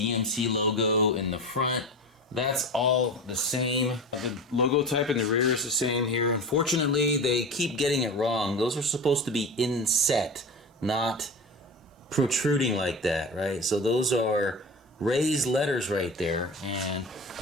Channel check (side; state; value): both; normal; correlation 0.29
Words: logo in the front, that's all the same. The logo type in the rear is the same here. Unfortunately, they keep getting it wrong. Those are supposed to be inset, not protruding like that, right? So those are raised letters right there, and